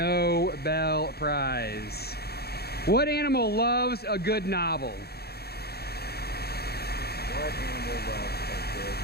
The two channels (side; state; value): right; late; 0.46 ms